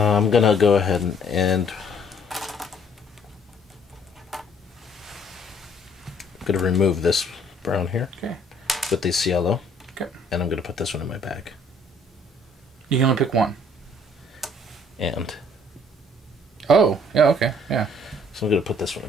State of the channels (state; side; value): normal; both; correlation 0.61